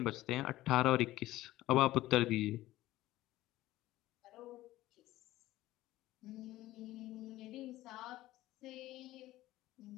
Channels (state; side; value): quieter; right; 16.2 dB